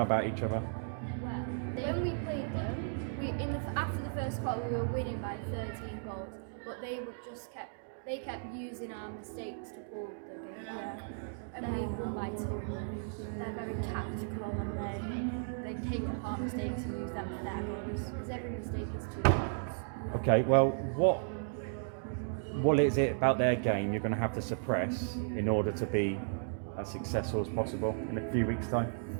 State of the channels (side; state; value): left; silent; digital silence